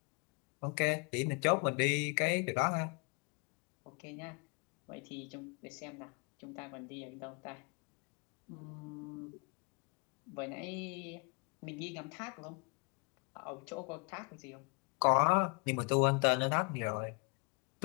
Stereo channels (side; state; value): right; quieter; 33.2 dB